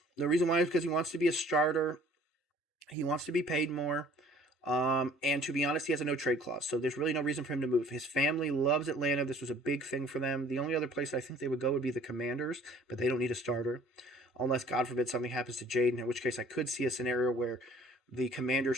The reason why is because he wants to be a starter. He wants to be paid more. And to be honest, he has a no trade clause, so there's really no reason for him to move. His family loves Atlanta. This was a big thing for them. The only other place I think they would go would be the Commanders, but they don't need a starter. Unless, God forbid, something happens to Jaden, in which case I could see a scenario where the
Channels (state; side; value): normal; both; correlation 0.54